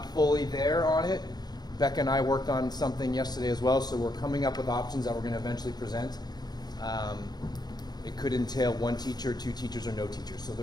fully there on it. Becca and I worked on something yesterday as well, so we're coming up with options that we're going to eventually present. It could entail 1 teacher, 2 teachers, or no teachers. So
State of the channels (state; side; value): late; right; 0.20 ms